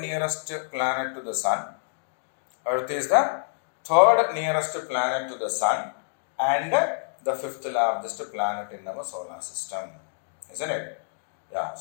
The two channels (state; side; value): silent; right; digital silence